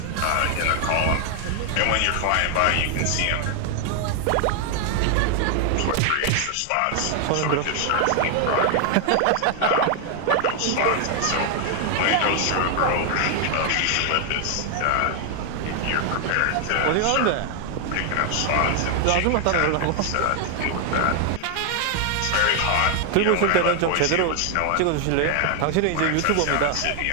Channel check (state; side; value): different; both; correlation 0.00